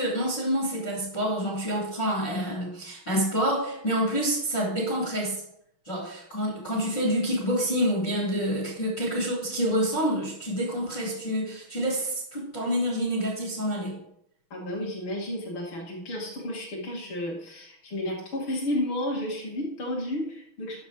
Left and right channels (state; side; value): late; right; 6.2 ms